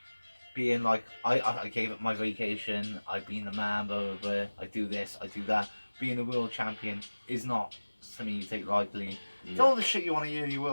being like, I gave up my vacation, I've been the man, blah, blah, blah, I do this, I do that. Being a world champion is not something you take lightly. It's all the shit you want to hear your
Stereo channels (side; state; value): both; inverted; correlation -1.00